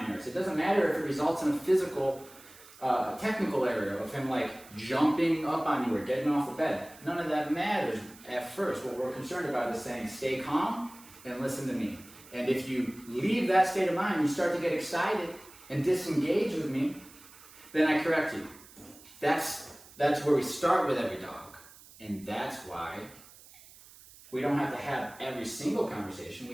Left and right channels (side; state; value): right; noise; hiss, 21 dB below the sound